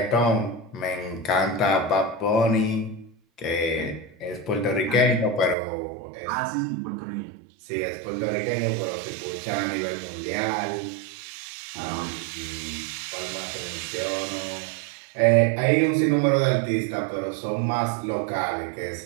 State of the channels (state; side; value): drops out; left; at 5.6 s